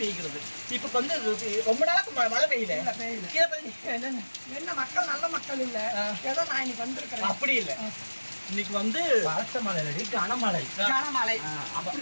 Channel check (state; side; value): inverted; both; correlation -1.00